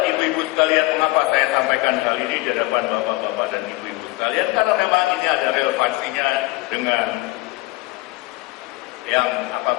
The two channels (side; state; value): right; quieter; 21.4 dB